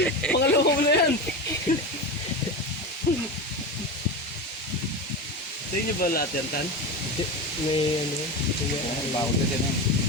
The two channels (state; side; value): normal; both; correlation 0.22